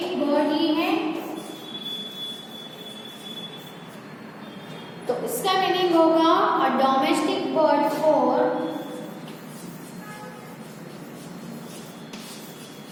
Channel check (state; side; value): identical; both; correlation 1.00